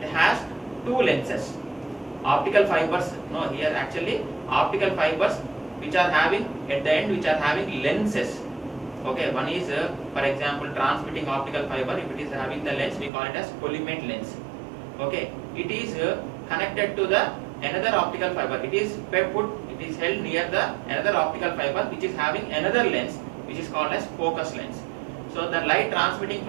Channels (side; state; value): left; drops out; at 13.1 s